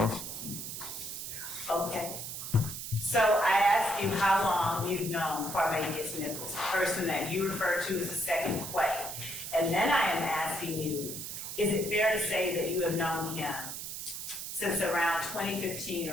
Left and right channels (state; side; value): noise; right; hiss, 7 dB below the sound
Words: Okay. So I asked you how long you've known Barbabius Nichols, the person that you refer to as the second Quay. And then I am asking you, is it fair to say that you have known him since around 2015